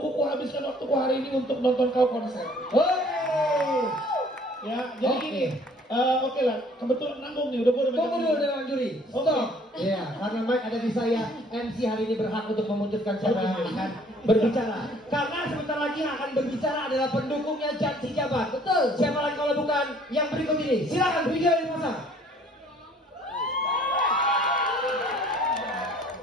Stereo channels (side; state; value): both; normal; correlation 0.57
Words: habiskan waktuku hari ini untuk nonton kau konser. Ya, jadi gini. Oke lah, kebetulan nanggung nih, udah boleh. Tunggu dulu dengan juri. Stop. Iya, karena mic ada di saya. MC hari ini berhak untuk memutuskan siapa yang akan berbicara. Karena sebentar lagi yang akan berbicara adalah pendukungnya Jan Sejabat. Betul. Siapa lagi kalau bukan yang berikut ini? Silakan video dipasang.